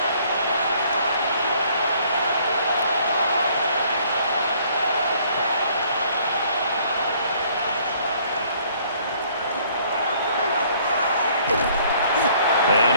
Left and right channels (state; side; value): inverted; both; correlation -0.60